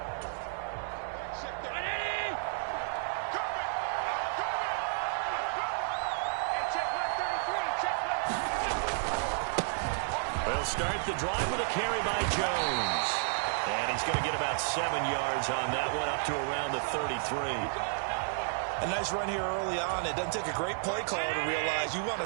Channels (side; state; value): left; silent; 57 dB below the other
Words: Start the drive with a carry by Jones. And he's going to get about 7 yards on that one, up to around the 33. A nice run here early on. It doesn't take a great play caller to realize you want to